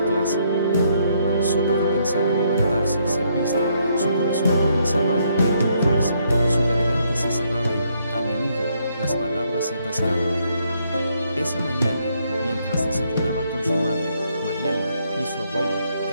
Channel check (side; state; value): both; inverted; correlation -0.72